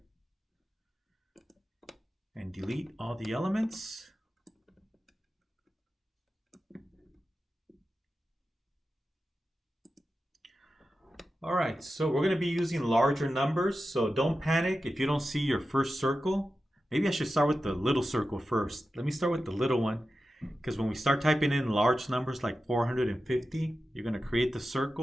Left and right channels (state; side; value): normal; both; correlation 0.92